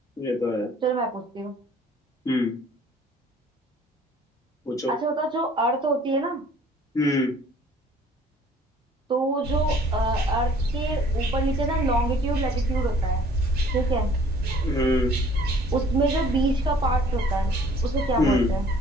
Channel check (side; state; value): both; normal; correlation 0.56